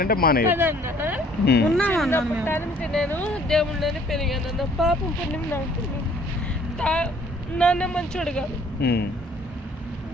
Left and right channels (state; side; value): normal; both; correlation 0.58